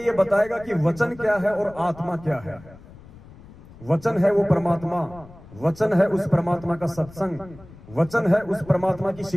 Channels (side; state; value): left; noise; rumble, 20 dB below the sound